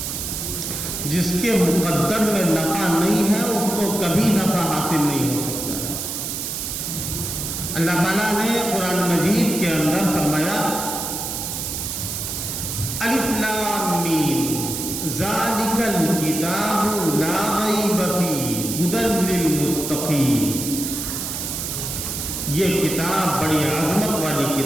جس کے مقدر میں نفع نہیں ہے اس کو کبھی نفع حاصل نہیں ہو سکتا. اللہ تعالیٰ نے قرآن مجید کے اندر فرمایا، الف لام میم ذالک الکتاب لا ریب فیہ ھدی للمتقین. یہ کتاب بڑی عظمت والی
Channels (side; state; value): right; noise; hiss, 4 dB below the sound